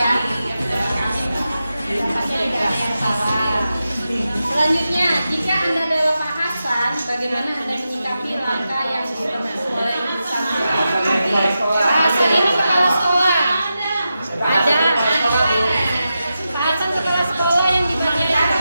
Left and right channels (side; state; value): both; inverted; correlation -0.90